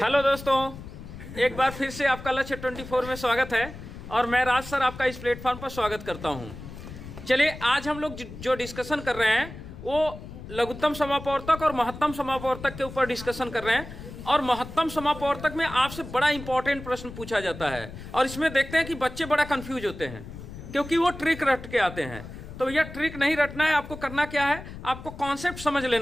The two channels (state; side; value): noise; left; rumble, 13 dB below the sound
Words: दोस्तों, एक बार फिर से आपका लक्ष्य 24 में स्वागत है और मैं राज सर आपका इस प्लेटफॉर्म पर स्वागत करता हूं। चलिए, आज हम लोग जो डिस्कशन कर रहे हैं वो लघुत्तम समापवर्तक और महत्तम समापवर्तक के ऊपर डिस्कशन कर रहे हैं। और महत्तम समापवर्तक में आपसे बड़ा इंपॉर्टेंट प्रश्न पूछा जाता है और इसमें देखते हैं कि बच्चे बड़ा कंफ्यूज होते हैं क्योंकि वो ट्रिक रट के आते हैं। तो भैया ट्रिक नहीं रटना है, आपको करना क्या है, आपको कॉन्सेप्ट समझ